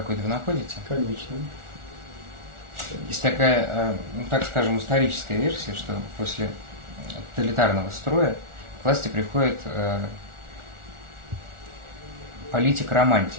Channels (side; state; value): left; late; 1.4 ms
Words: вы находите? Конечно. Есть такая, ну, так скажем, историческая версия, что после тоталитарного строя к власти приходит